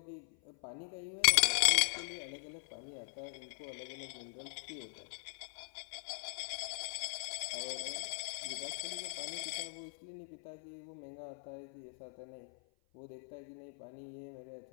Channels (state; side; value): silent; right; 51 dB below the other